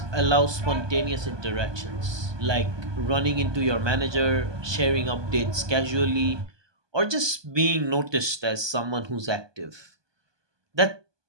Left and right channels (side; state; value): left; late; 1.2 ms